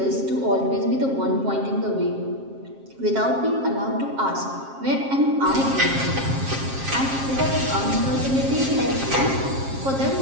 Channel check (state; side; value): late; left; 7.5 ms